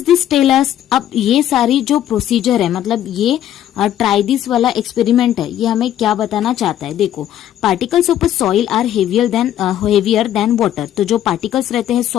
this tell us. अब ये सारी जो प्रोसीजर है, मतलब ये ट्राई दिस वाला एक्सपेरिमेंट है, ये हमें क्या बताना चाहता है। देखो, particles of soil are heavier than water. तो जो पार्टिकल्स रहते हैं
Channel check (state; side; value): quieter; right; 11.5 dB